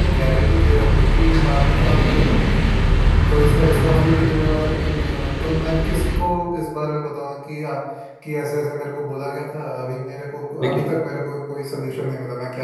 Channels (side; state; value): both; identical; correlation 1.00